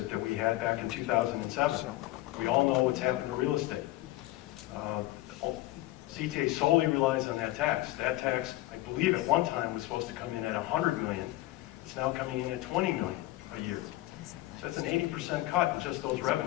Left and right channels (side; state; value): right; quieter; 17.5 dB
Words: that we had back in 2007. We all know what's happened to real estate. CTA solely relies on that tax. That tax, I believe at one time, was supposed to come in at $100 million. It's now coming in at $20 million a year. So that's an 80% cut in just those